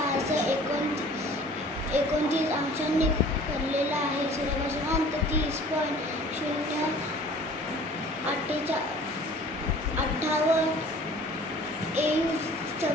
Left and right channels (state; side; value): normal; both; correlation 0.48